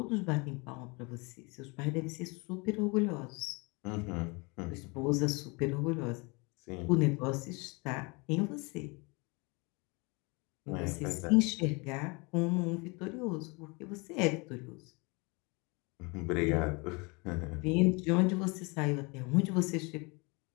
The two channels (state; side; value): quieter; right; 28.8 dB